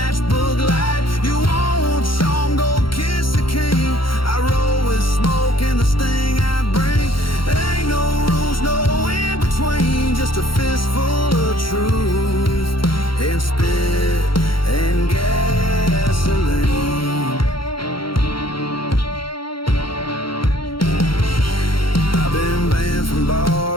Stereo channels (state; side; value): late; right; 0.73 ms